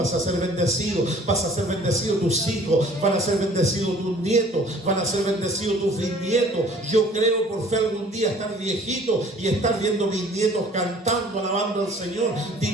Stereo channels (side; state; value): both; normal; correlation 0.52